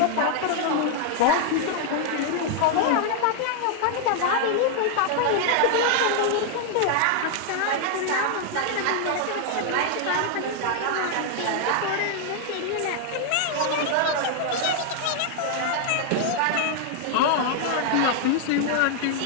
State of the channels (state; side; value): different; both; correlation 0.00